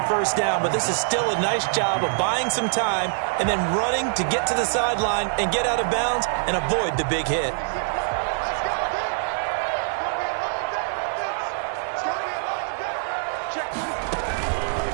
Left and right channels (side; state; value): left; silent; 60 dB below the other